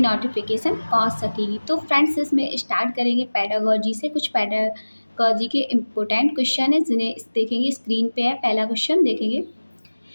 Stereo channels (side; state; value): both; inverted; correlation -1.00